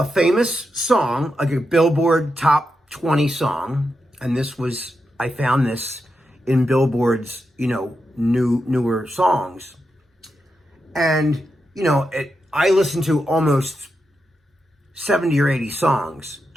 famous song, like a Billboard Top 20 song, and I found this in Billboard's, newer songs. And, I listen to almost 70 or 80 songs,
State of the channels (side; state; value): both; normal; correlation 0.86